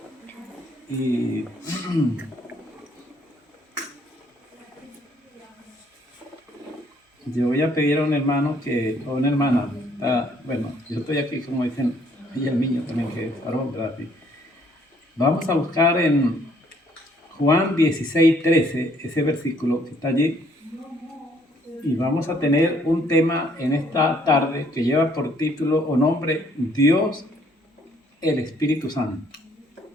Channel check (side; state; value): both; normal; correlation 0.65